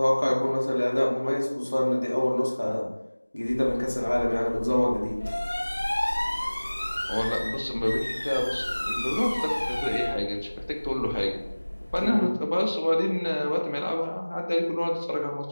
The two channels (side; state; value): both; inverted; correlation -1.00